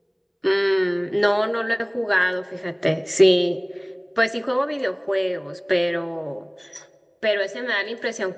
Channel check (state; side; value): identical; both; correlation 1.00